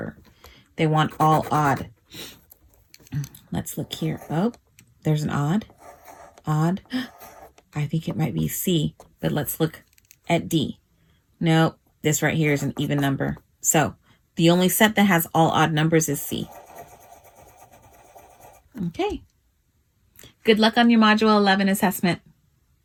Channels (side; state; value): both; identical; correlation 1.00